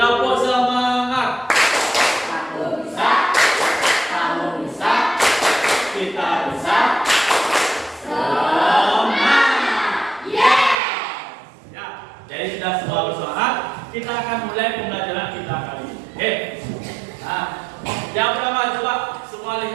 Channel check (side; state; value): left; drops out; at 10.8 s